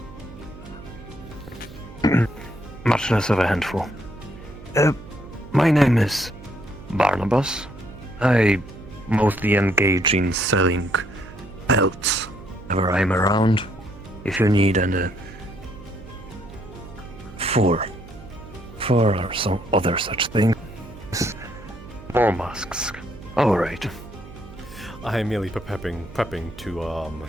Much less of a handful. My name is Barnabas. I mostly engage in selling pelts whenever I'm around. If you need an four or some other such thing. More masks. All right. I am merely prepping to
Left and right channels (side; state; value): right; noise; hum, 17 dB below the sound